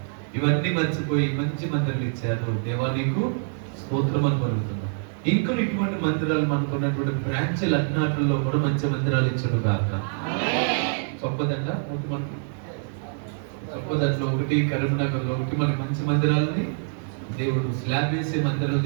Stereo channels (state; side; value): silent; left; 62 dB below the other